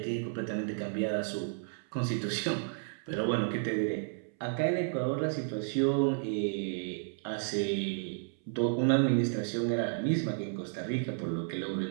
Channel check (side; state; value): left; silent; 56 dB below the other